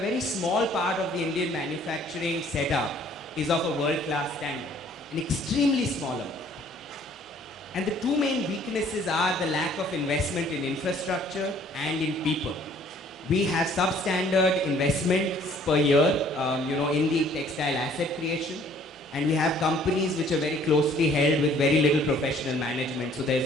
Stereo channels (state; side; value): normal; both; correlation 0.58